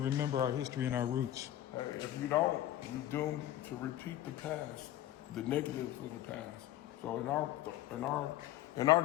our history and our roots? If you don't, you're doomed to repeat the past, the negative of the past. So in our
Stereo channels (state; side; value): quieter; right; 13.3 dB